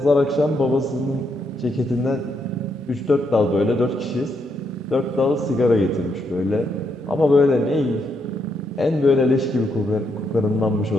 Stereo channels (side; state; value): both; normal; correlation 0.78